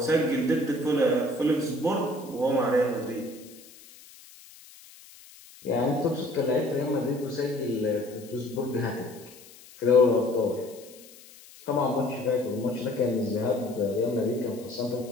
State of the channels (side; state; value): left; noise; hiss, 21 dB below the sound